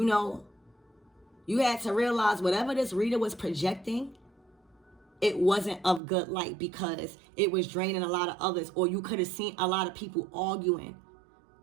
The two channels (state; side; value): drops out; left; at 6.0 s